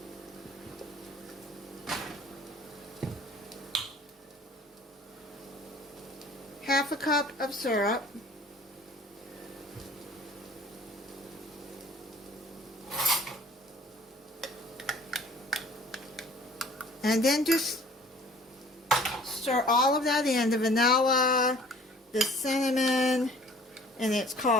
. Half a cup of syrup. And then just stir all of that in, the vanilla, the cinnamon, and it's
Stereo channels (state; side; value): normal; both; correlation 0.51